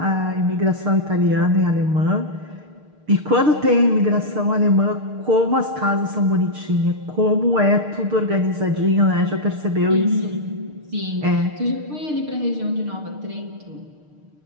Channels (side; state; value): left; late; 6.6 ms